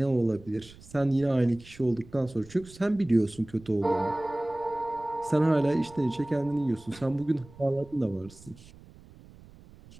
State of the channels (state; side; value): noise; right; rumble, 22 dB below the sound